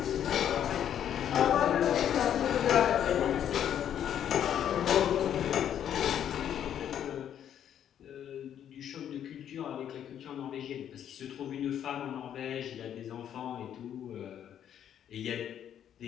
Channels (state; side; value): quieter; right; 9.8 dB